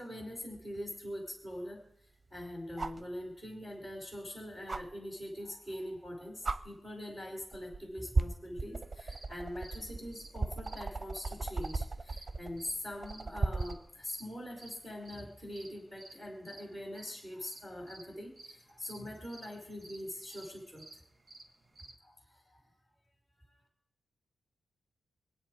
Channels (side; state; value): both; normal; correlation 0.95